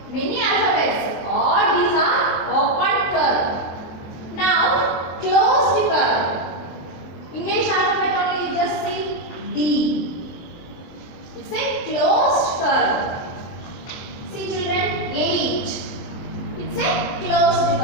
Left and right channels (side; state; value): right; late; 23 ms